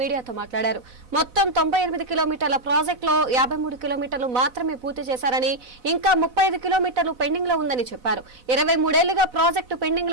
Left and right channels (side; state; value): left; late; 4.0 ms